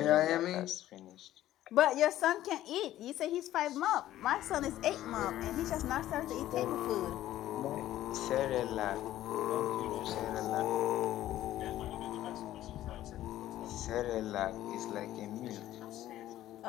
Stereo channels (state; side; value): quieter; right; 13.7 dB